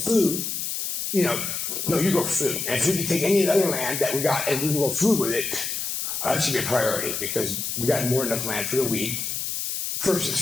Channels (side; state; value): left; noise; hiss, 3 dB below the sound